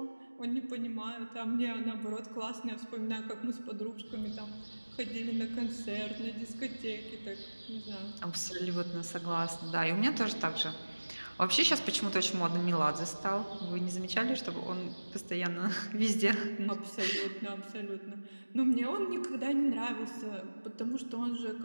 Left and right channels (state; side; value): inverted; both; correlation -1.00